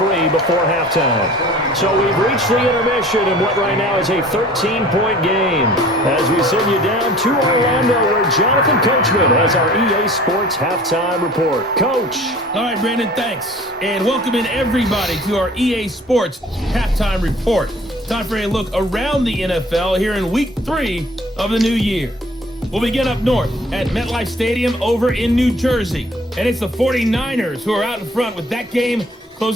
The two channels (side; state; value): both; normal; correlation 0.49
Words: before halftime. So we've reached the intermission in what right now is a 13-point game. As we send you down to Orlando, where Jonathan Coachman has our EA Sports Halftime Report. Coach. All right, Brandon, thanks. And welcome in everybody to our EA Sports Halftime Report. Time for a look around the NFL here in Week 3 of the new year. We'll begin up north at MetLife Stadium over in New Jersey. And it's the 49ers who are out in front with that game